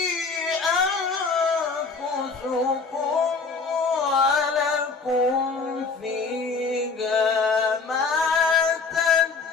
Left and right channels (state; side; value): quieter; right; 4.6 dB